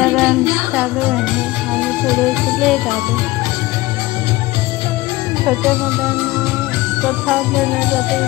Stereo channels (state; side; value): quieter; right; 19.3 dB